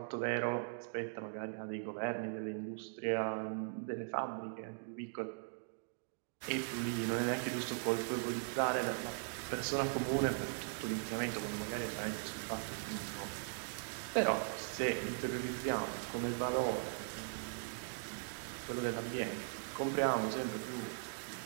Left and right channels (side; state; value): left; silent; digital silence